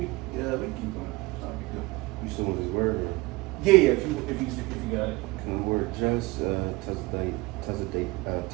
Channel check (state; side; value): quieter; left; 22.4 dB